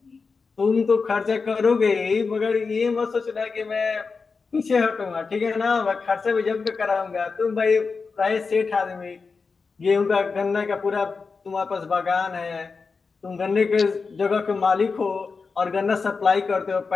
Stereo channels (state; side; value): quieter; right; 4.7 dB